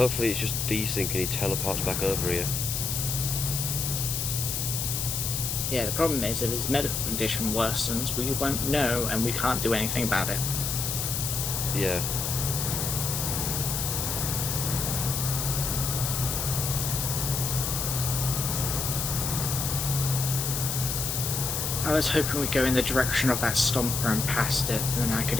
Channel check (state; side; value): noise; left; hiss, 1 dB below the sound